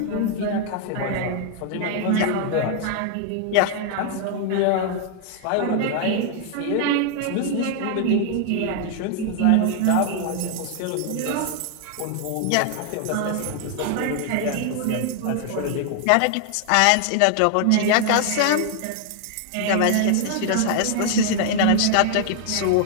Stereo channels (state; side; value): different; both; correlation 0.00